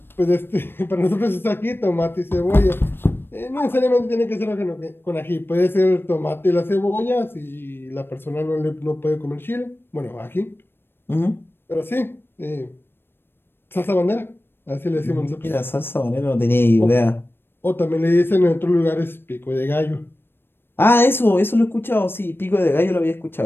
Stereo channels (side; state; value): right; late; 0.10 ms